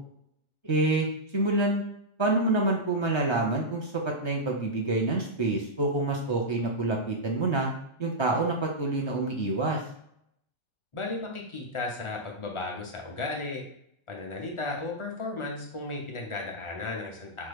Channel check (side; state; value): right; late; 1.3 ms